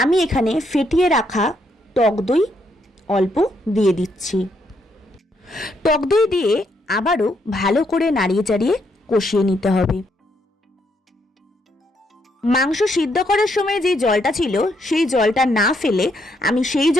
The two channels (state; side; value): normal; both; correlation 0.75